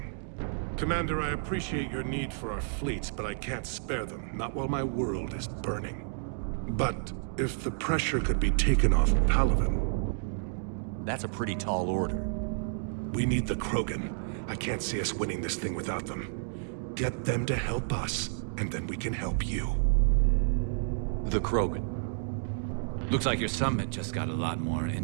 Commander, I appreciate your need for our fleets, but I can't spare them, not while my world is burning. But if the pressure could be taken off Palaven... That's a pretty tall order. We need the Krogan. I can't see us winning this thing without them. Get them to help us, and then we can help you. The Krogan. Looks like your summit just got a lot more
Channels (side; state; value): left; silent; digital silence